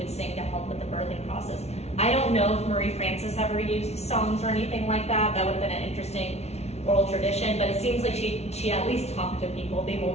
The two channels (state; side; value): late; right; 0.31 ms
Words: sing to help with the birthing process. I don't know if Marie Frances ever used songs or anything like that. That would have been an interesting oral tradition, but it seems like she at least talked to people the